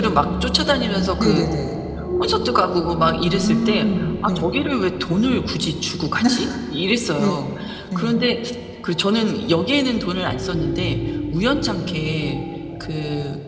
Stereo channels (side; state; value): both; identical; correlation 1.00